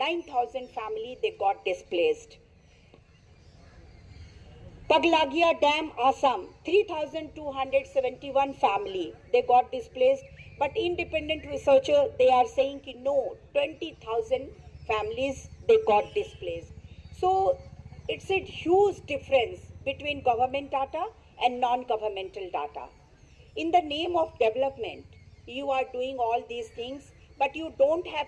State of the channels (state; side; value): identical; both; correlation 1.00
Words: families they got displaced. Paglagia Dam, Assam, 3,271 family they got displaced. But independent researcher, they are saying ki no, 20,000 families they got displaced. So it's a huge difference between government data and non-governmental data. In the name of development, you are doing all these things, but you don't have